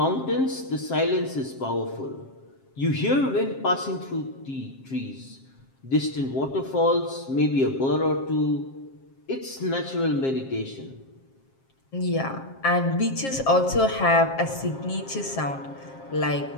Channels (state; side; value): late; right; 7.5 ms